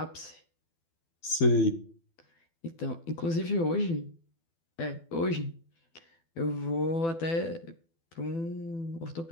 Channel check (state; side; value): late; right; 12 ms